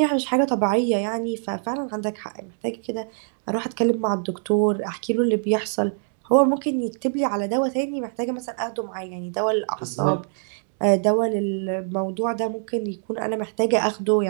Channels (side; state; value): left; silent; 63 dB below the other